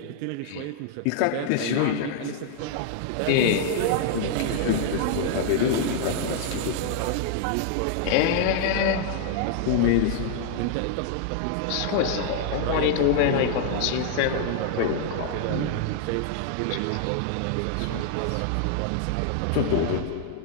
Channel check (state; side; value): different; both; correlation 0.00